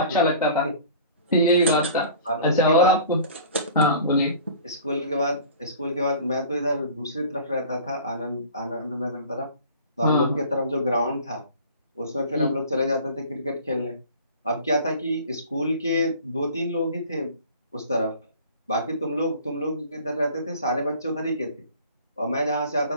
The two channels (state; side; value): inverted; both; correlation -0.44